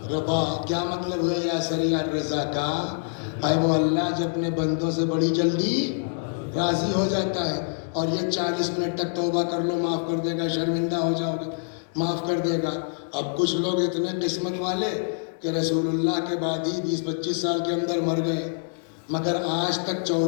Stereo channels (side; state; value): right; silent; digital silence